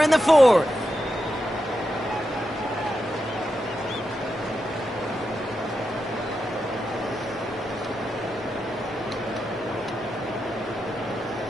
in the 4th.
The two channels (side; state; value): both; normal; correlation 0.87